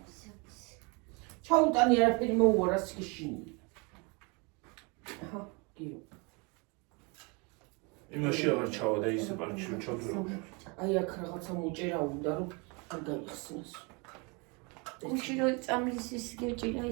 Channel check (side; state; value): left; quieter; 30.5 dB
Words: ჩაუტანი არაფერი მოუარა სქიშინი. აჰა, გიო. იმაში აღარ ჩავა და ის პარკში ჩავდრო. აი აქ რაღაცა მოჭერა უნდა რომ არ გაიხსნას. კუჩი რო წამლის ის გეჭირა